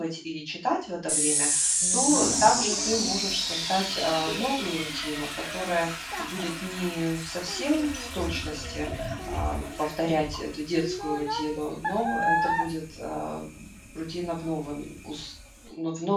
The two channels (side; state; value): both; identical; correlation 1.00